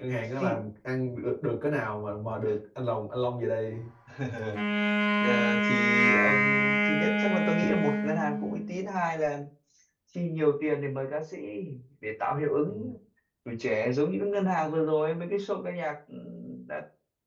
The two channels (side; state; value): both; identical; correlation 1.00